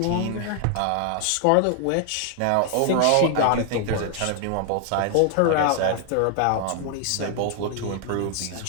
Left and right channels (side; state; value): both; different; correlation 0.00